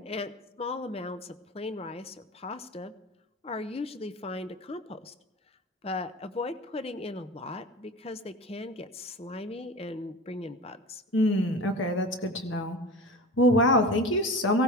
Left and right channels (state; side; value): normal; both; correlation 0.33